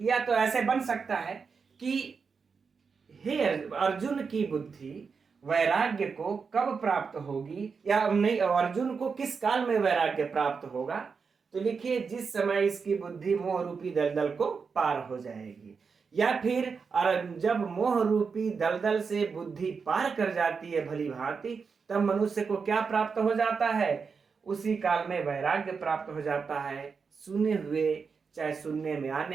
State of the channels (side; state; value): left; quieter; 5.4 dB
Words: या तो ऐसे बन सकता है कि हे अर्जुन की बुद्धि वैराग्य को कब प्राप्त होगी, या नहीं, अर्जुन को किस काल में वैराग्य प्राप्त होगा? तो लिखिए, जिस समय इसकी बुद्धि मोह रूपी दलदल को पार हो जाएगी, या फिर जब मोह रूपी दलदल से बुद्धि पार कर जाती है भली भांति, तब मनुष्य को क्या प्राप्त हो जाता है? उसी काल में वैराग्य प्राप्त हो जाता है, सुने हुए चाहे सुनने में